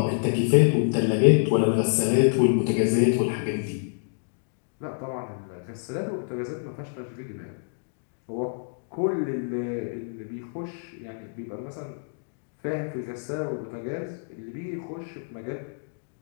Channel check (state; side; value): silent; right; digital silence